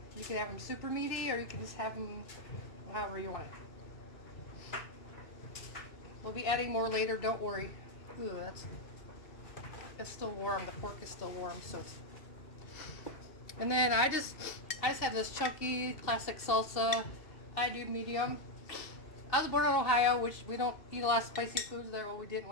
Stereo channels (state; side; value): late; right; 2.7 ms